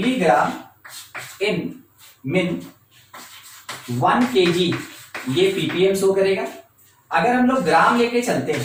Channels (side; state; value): both; identical; correlation 1.00